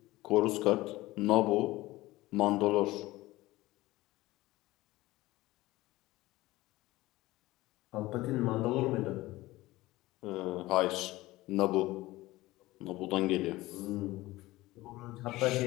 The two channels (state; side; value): quieter; right; 18.5 dB